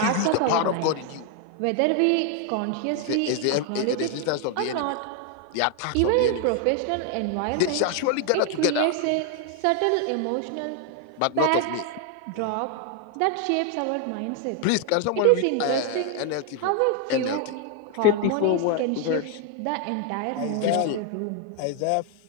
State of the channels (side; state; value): both; different; correlation 0.00